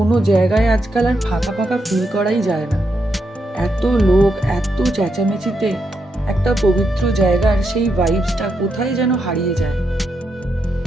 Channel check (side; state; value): both; normal; correlation 0.82